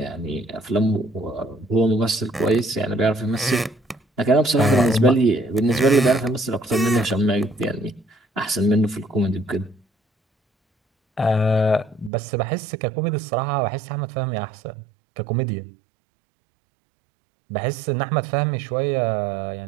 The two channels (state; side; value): drops out; left; at 12.1 s